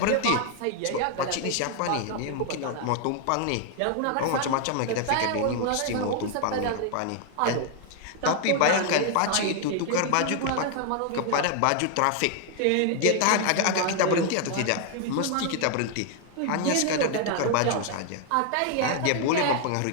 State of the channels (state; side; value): different; both; correlation 0.00